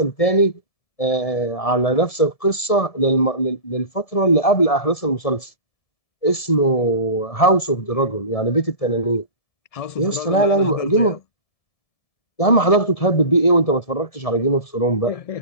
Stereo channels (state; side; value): late; right; 1.7 ms